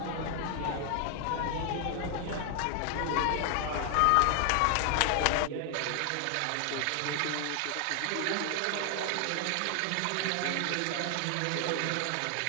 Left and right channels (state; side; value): different; both; correlation 0.00